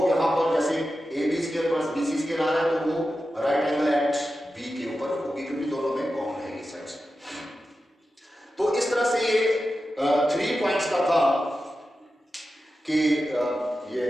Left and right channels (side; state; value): both; normal; correlation 0.92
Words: यहाँ पर जैसे A B square plus B C square आ रहा है तो वो राइट एंगल एट बी के ऊपर होगी क्योंकि दोनों में कॉमन है ये साइड्स। तो इस तरह से ये 3 पॉइंट्स का था कि ये